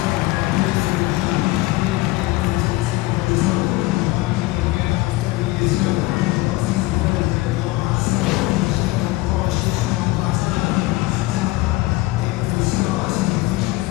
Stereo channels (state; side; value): quieter; right; 19.7 dB